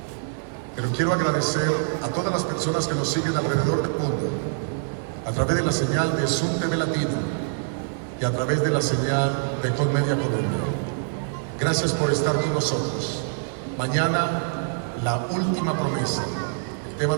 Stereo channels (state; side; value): silent; left; digital silence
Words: Pero quiero agradecer a todas las personas que nos siguen alrededor del mundo, a través de la señal de Zoom TV Latino y a través de la señal de Colmedia Colombia. Gracias por estar con nosotros. Mañana, la última promesa. El tema